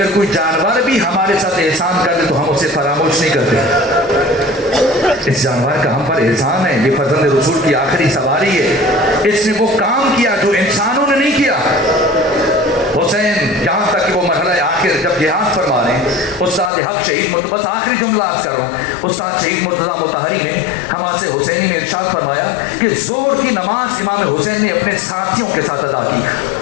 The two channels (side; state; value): right; drops out; at 16.7 s